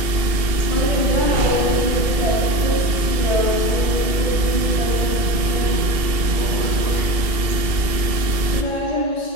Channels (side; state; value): left; late; 2.7 ms